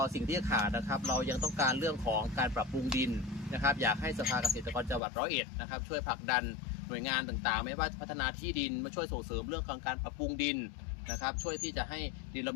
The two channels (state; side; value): drops out; right; at 5.0 s